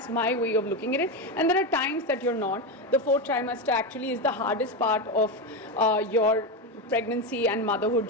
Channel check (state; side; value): normal; both; correlation 0.13